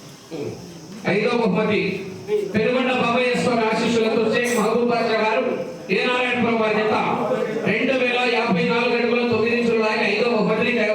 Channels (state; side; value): identical; both; correlation 1.00